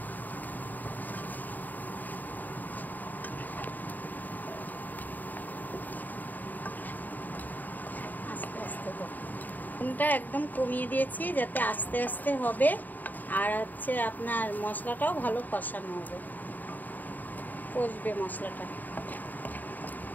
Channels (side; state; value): right; late; 0.085 ms